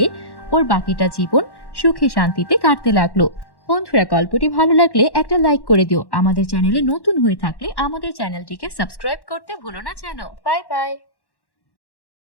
ওর বাকিটা জীবন সুখে শান্তিতে কাটতে লাগলো। বন্ধুরা, গল্পটি ভালো লাগলে একটা লাইক করে দিও। আমাদের চ্যানেলে নতুন হয়ে থাকলে আমাদের চ্যানেলটিকে সাবস্ক্রাইব করতে ভুলো না যেন। Bye bye.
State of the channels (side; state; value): right; late; 1.1 ms